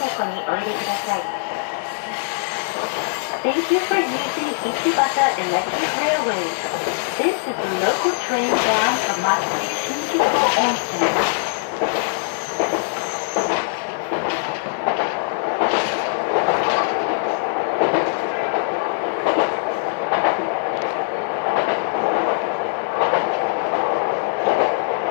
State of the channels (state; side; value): silent; right; 57 dB below the other